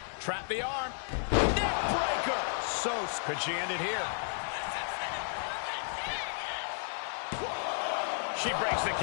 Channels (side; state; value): right; silent; digital silence